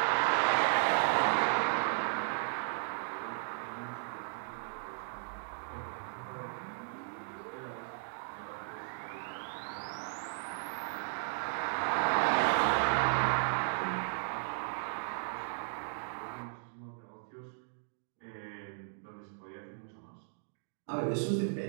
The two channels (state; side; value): silent; left; digital silence